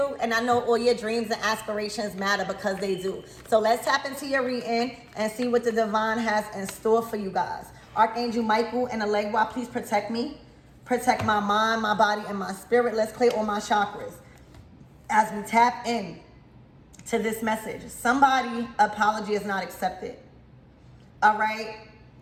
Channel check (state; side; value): identical; both; correlation 1.00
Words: and I know all your dreams and aspirations matter because they do. So let's tap into your reading and see what the divine has in store for you guys. Archangel Michael and Allegra, please protect me. Protect my mind, my body, and my spirit. Let's clear all my chakras as we tap in to this message. Somebody apology is not accepted. All right.